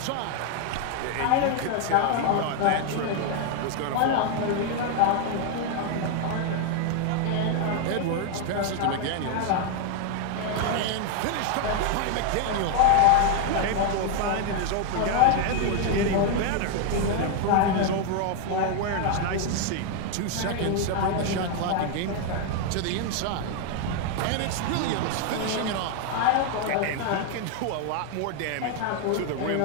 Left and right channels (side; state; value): both; different; correlation 0.01